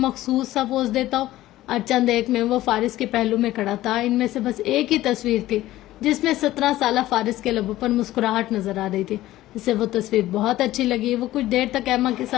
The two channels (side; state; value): right; quieter; 15.5 dB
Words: سا پوز دیتا ہو. اور چند ایک میں وہ فارس کے پہلو میں کھڑا تھا. ان میں سے بس ایک ہی تصویر تھی جس میں 17 سالہ فارس کے لبوں پر مسکراہٹ نظر آ رہی تھی. اسے وہ تصویر بہت اچھی لگی. وہ کچھ دیر تک ایما کے